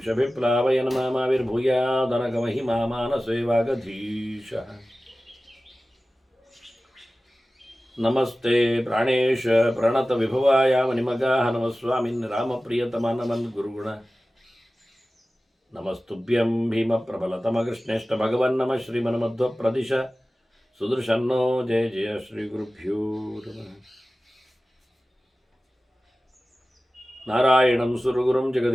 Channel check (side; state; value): both; normal; correlation 0.96